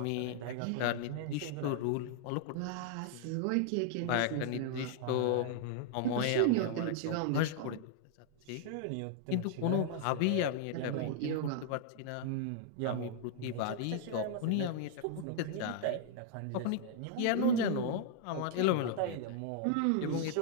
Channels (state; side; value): different; both; correlation -0.01